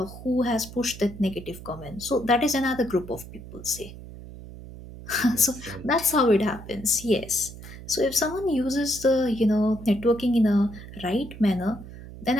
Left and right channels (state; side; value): noise; right; hum, 14 dB below the sound